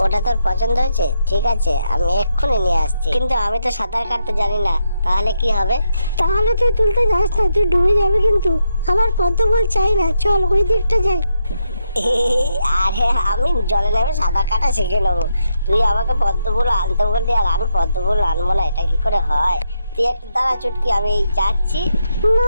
ওটা তোর পছন্দ হয়েছে? ঠিক আছে, আমি এক্ষুনি নিয়ে আসছি। কিন্তু আমি তো সাঁতার কাটতে জানি না, তাহলে কি হবে? তাহলে তুই তুলতে যাস না, তুই ডুবে যাবে কিন্তু। আমার পদ্ম ফুল চাই না, চল ওই দিকটা যাই। আরে আমি জলে নেমে সাঁতার কাটা শিখে নেবো। তুই আমাকে পদ্ম ফুল আনতে বললি আর আমি পদ্ম ফুল আনবো না, এটা কি করে হয়? তুই একটু দাঁড়া চুটকি, আমি যাচ্ছি। না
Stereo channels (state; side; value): inverted; both; correlation -0.82